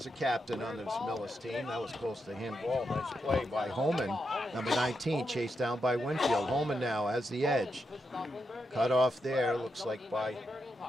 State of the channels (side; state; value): both; normal; correlation 0.84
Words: a captain on this Millis team. That was close to him. Ball. Nice play by Holman. Number 19 chased down by Winfield. Holman now has the edge. Cut off there. Looks like by